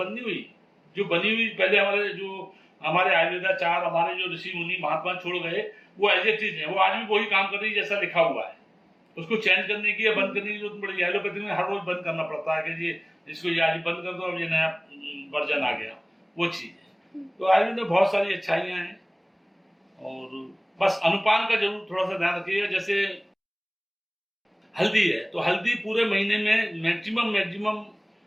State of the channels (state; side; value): identical; both; correlation 1.00